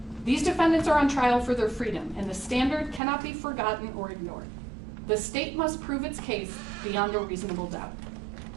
These defendants are on trial for their freedom, and the standard cannot be forgotten or ignored. The state must prove its case beyond a reasonable doubt.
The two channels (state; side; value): drops out; left; at 3.0 s